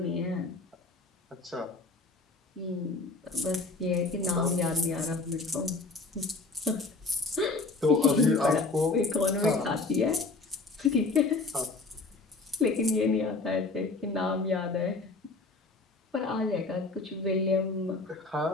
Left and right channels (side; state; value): right; quieter; 3.6 dB